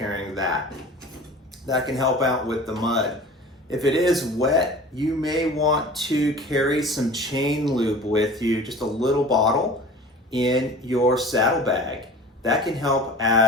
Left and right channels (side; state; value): both; normal; correlation 0.40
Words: that. That can help out with the mud. If it is wet, you may want to carry some chain lube with you, just a little bottle in your saddlebag. That can help